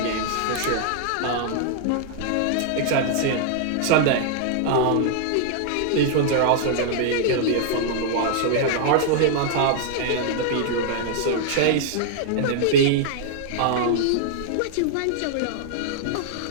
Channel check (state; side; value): different; both; correlation -0.01